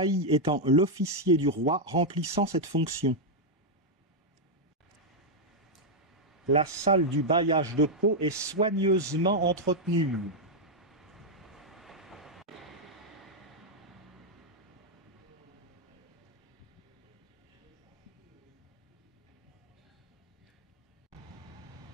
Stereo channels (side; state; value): both; normal; correlation -0.02